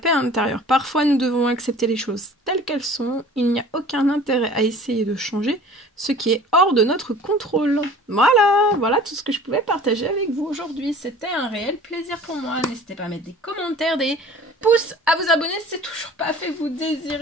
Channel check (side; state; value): both; normal; correlation 0.46